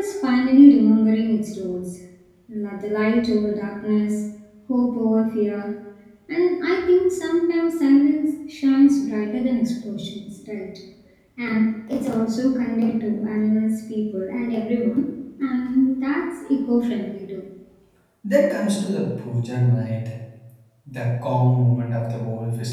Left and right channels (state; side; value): identical; both; correlation 1.00